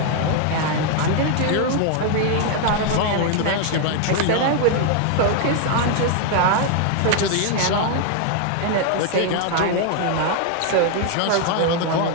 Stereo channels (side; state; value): both; different; correlation 0.00